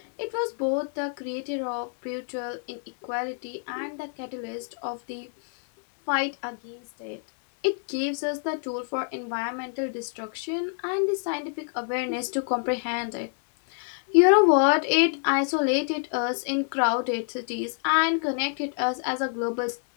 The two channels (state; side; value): silent; right; 60 dB below the other